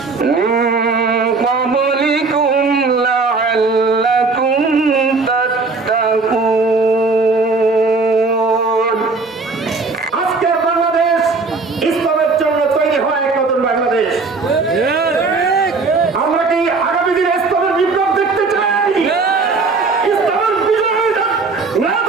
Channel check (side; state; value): left; quieter; 4.0 dB